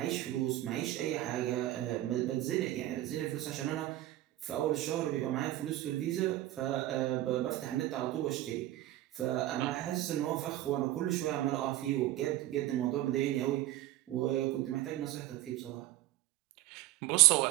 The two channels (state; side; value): quieter; left; 15.3 dB